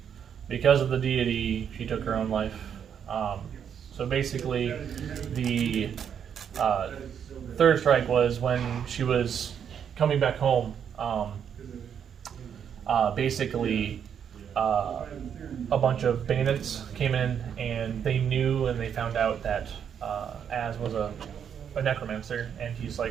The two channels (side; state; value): left; quieter; 8.1 dB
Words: because of the deity she took her own life. So basically, the third strike was when she was coming back home. Basically, a bunch of bandits came in, and they knew and they found out that Az was a necromancer, and he's